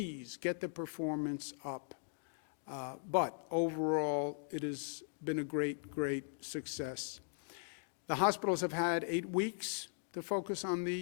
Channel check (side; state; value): right; silent; digital silence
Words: get the performance up. But overall, it has been a great, great success. The hospitals have had 8 weeks to focus on